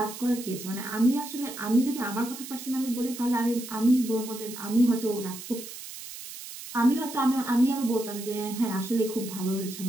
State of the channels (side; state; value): right; noise; hiss, 12 dB below the sound